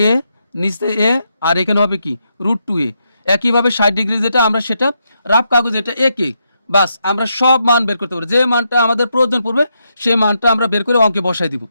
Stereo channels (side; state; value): both; inverted; correlation -0.81